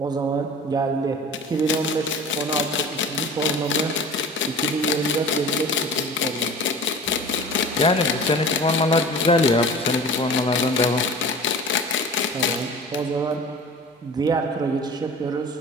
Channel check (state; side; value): normal; both; correlation 0.39